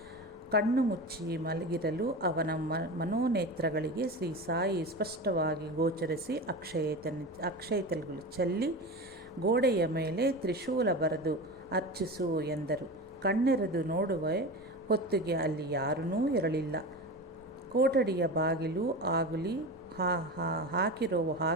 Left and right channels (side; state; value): both; normal; correlation 0.27